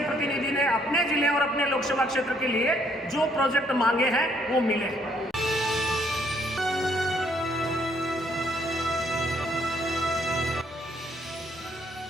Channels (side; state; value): both; normal; correlation 0.68